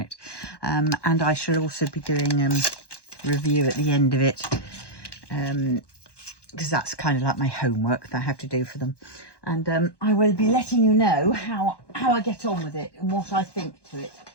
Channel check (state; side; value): late; right; 1.1 ms